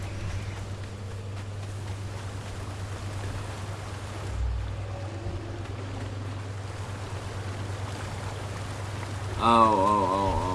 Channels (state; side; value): identical; both; correlation 1.00